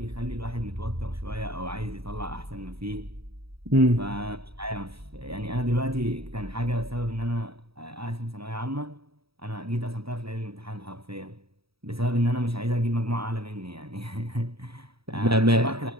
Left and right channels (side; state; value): left; late; 0.76 ms